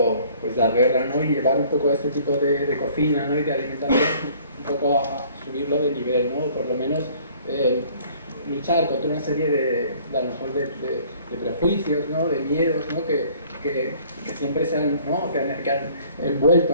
pues dar guerra, ¿no? Y llevar un poco este tipo de cocina, ¿no? Y de alimentación un poco a subirlo de nivel, ¿no? Por lo menos luchar contra una serie a lo mejor de prejuicios, ¿no? De miedos, ¿no? Que siempre se han, ¿no? que han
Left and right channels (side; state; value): both; inverted; correlation -0.55